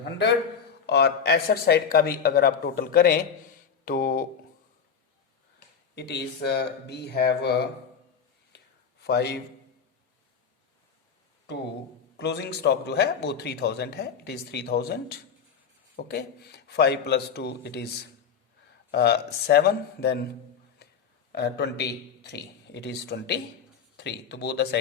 और एसेट साइड का भी अगर आप टोटल करें तो it is we have 5 to closing stock जो है वो 3,000 है, it is 3,000। Okay, 5 + 2 it is 7, then 23, it is 23। तो both the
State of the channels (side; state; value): right; quieter; 6.9 dB